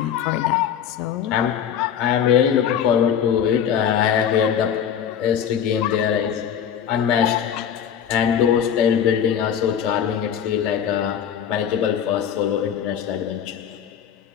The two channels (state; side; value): quieter; right; 8.7 dB